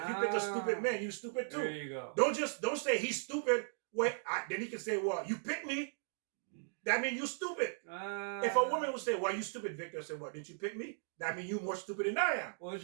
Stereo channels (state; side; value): silent; left; digital silence